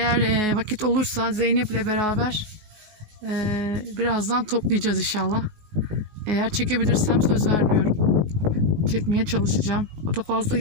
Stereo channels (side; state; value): left; late; 19 ms